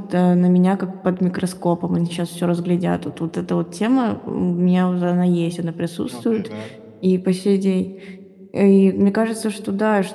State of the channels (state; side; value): identical; both; correlation 1.00